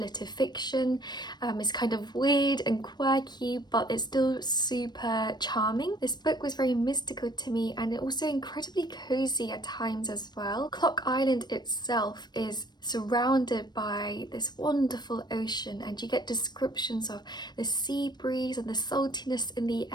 fiction. It's kind of weird and quirky, but it's still super charming. This book was very mystical to me and also incredibly cozy at times as well. Clock Island itself is surrounded by this wonderful ocean, and you get descriptions of the sea breeze and the saltiness in the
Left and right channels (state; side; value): late; right; 0.21 ms